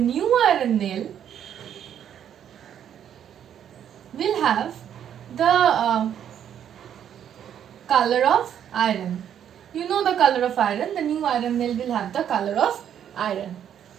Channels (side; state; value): left; quieter; 9.5 dB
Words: iron nail will have the color of iron. You know the color of iron, the new iron nail will have the color of iron.